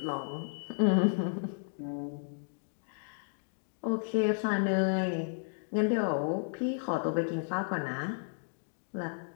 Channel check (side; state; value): right; silent; digital silence